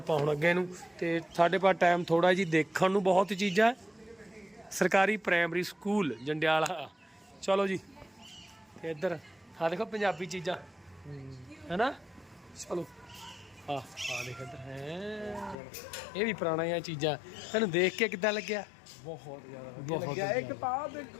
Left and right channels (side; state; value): right; drops out; at 15.6 s